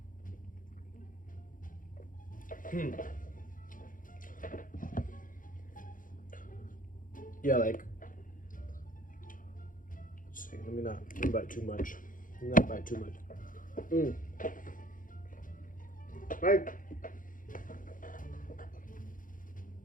Yeah, like, let's see, let me not bite too much. Not bite too much. Right.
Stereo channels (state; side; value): late; right; 0.39 ms